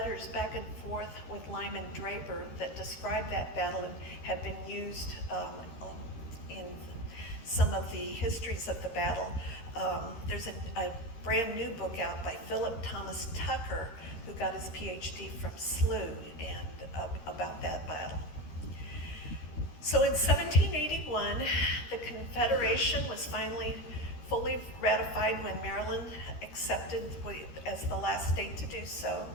back and forth with Lyman Draper that describe that battle and have been used in some of the histories of the battle. There's a brand new book out by Philip Thomas Tucker, who got his PhD from SLU, and about that battle. So in 1781, the Confederation was finally fully ratified when Maryland accepted as the last state to do so.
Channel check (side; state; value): right; late; 13 ms